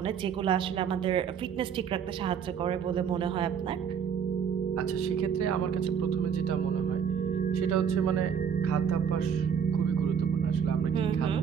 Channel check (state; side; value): quieter; left; 7.4 dB